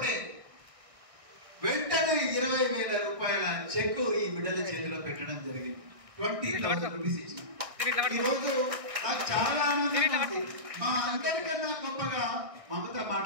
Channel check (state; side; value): late; left; 1.6 ms